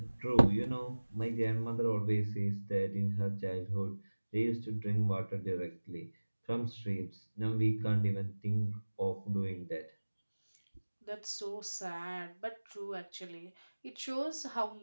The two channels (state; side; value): inverted; both; correlation -1.00